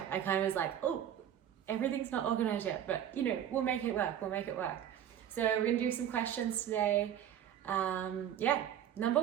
of was like, oh, everything's not organized yet, but you know, we'll make it work, So we're gonna do some questions today. Number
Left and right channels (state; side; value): quieter; left; 10.2 dB